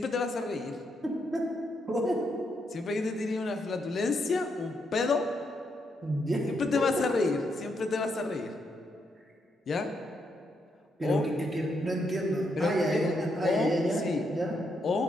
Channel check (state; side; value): normal; both; correlation 0.79